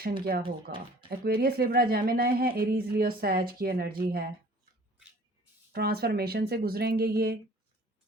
क्या होगा? एक्वेरियस, लिब्रा, जेमिनी है, एरीज, लियो, सैज की एनर्जी है। ट्रांसफॉर्मेशन से गुजरेंगे ये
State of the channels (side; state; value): both; normal; correlation 0.50